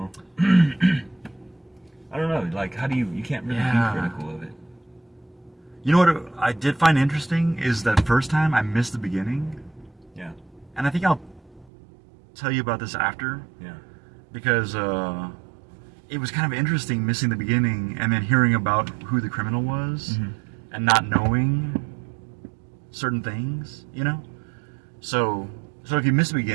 I don't know. Like, how do you can't really be critical of it. You know what I did find interesting is that first time I missed the beginning. Yeah. And I think I'll tell you about this after. Yeah. Because it was kind of interesting missing the beginning and then hearing about who the criminal was and not knowing certain things, you know? So if you miss the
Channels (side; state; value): left; drops out; at 11.7 s